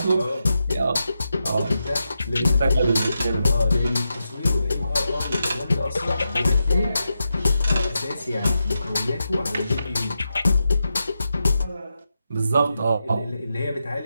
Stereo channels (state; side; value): inverted; both; correlation -0.88